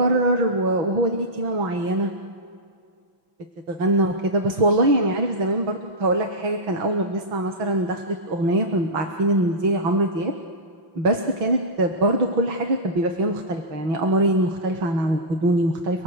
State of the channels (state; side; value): late; left; 5.9 ms